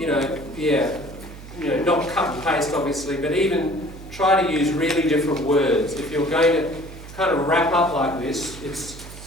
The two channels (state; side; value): noise; right; hum, 15 dB below the sound